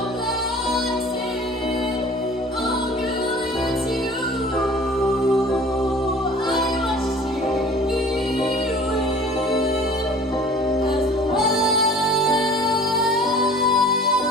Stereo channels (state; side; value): normal; both; correlation 0.47